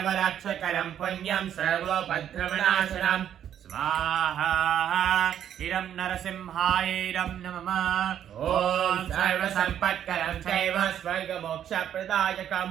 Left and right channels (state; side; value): quieter; left; 9.9 dB